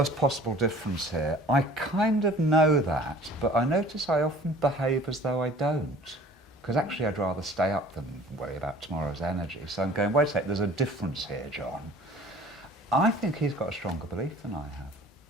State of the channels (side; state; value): both; normal; correlation 0.48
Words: possible difference here. I kind of know that, but I notice I often behave as though I don't. Because actually I'd rather stay up than worry about tomorrow's energy. So I'm going, wait a sec, there's a difference here, John. I think he's got a stronger belief than I